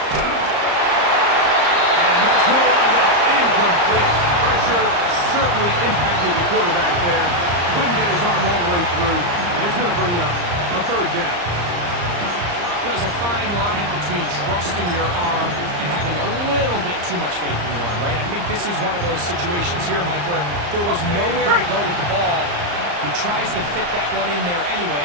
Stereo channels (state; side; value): late; left; 34 ms